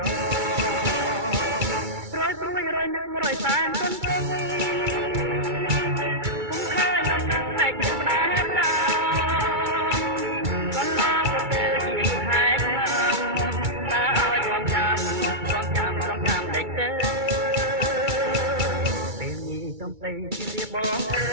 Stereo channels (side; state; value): left; late; 2.3 ms